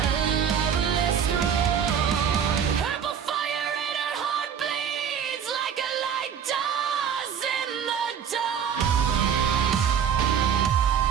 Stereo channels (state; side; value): quieter; left; 7.9 dB